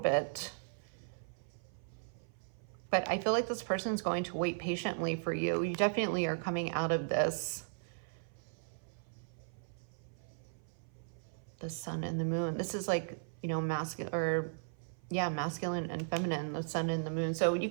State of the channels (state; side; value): silent; left; 53 dB below the other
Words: But I feel like this person's going to wait patiently for you. You definitely are coming out of this. The Sun and the Moon. This is like, you know, masculine, or yeah, masculine and feminine, the Sun and the Moon. So you